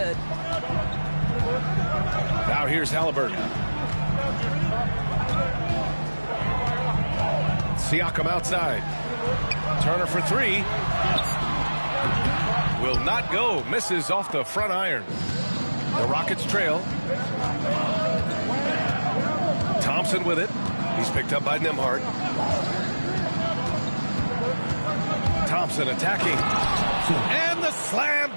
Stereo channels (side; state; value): both; inverted; correlation -1.00